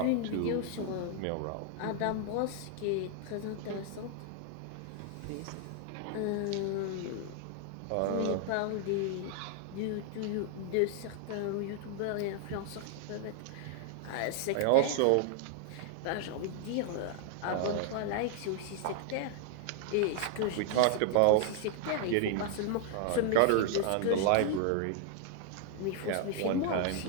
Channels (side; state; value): both; different; correlation 0.00